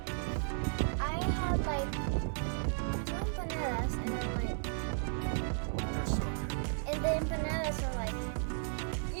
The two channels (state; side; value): silent; left; 55 dB below the other